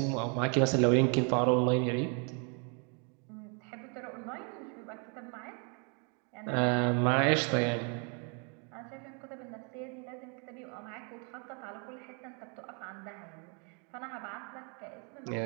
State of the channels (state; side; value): quieter; left; 36.6 dB